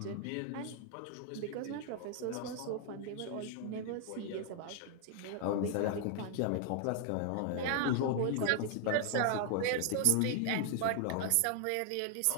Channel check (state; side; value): different; both; correlation 0.00